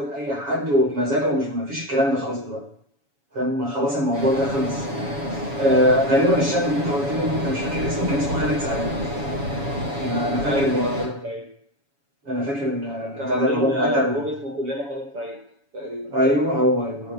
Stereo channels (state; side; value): late; left; 7.2 ms